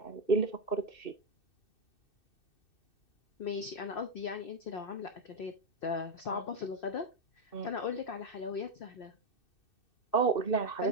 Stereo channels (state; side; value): late; right; 2.6 ms